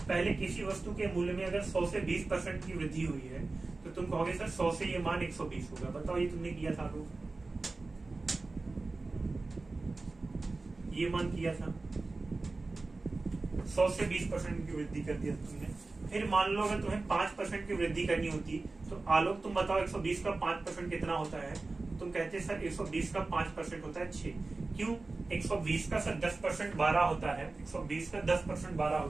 पहले किसी वस्तु के मूल्य में अगर 100 से 20% की वृद्धि हुई है तो तुम कहोगे सर 100 से ये मान 120 होगा। बताओ ये तुमने किया था लोग, ये मान किया था, 100 से 20% की वृद्धि कर दिया तुमने। फिर मान लो अगर तुम्हें 5% की वृद्धि करनी होती तो आलोक तुम बताओ 120 का 5% कितना होता है। तुम कहते सर 120 का 5% होता है 6। क्यों? 120 का सर 10% 12 होता है, 120 का 10% 12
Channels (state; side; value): quieter; left; 3.5 dB